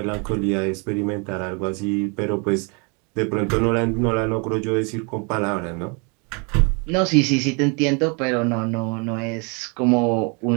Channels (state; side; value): quieter; left; 33.5 dB